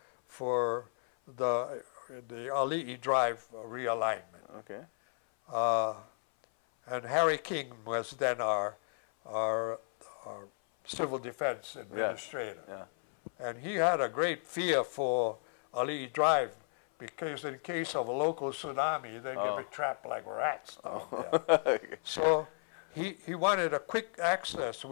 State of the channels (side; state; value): right; silent; 55 dB below the other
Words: the Ali'i Drive realignment. Okay. And Harry King was then our civil defense administrator. Yeah. And he had a great fear for Ali'i Drive because in case of a local tsunami, they'd get trapped like rats down there. So he wanted a quick access.